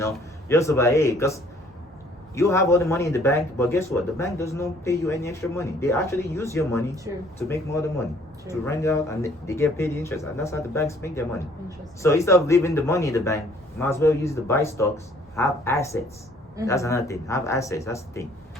just about, hey, because you have all the money in the bank, but guess what? The bank does not pay you any extra money. They actually use your money to make more of the money. To rent it out, and they get paid interest, and that's how the banks make their money. So instead of leaving the money in the bank, you might as well use it to buy stocks. Have assets. That's another thing. Have assets. That's the thing,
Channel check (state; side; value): normal; both; correlation 0.59